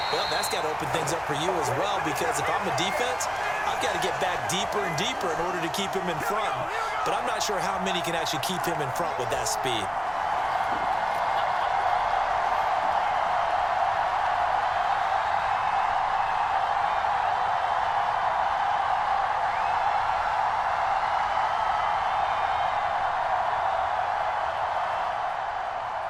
Well, that's got to open things up for you as well, because if I'm a defense, they've got to get back deeper and deeper in order to keep him in front. But I'm not sure how many can actually keep him in front with that speed.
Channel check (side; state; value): both; identical; correlation 1.00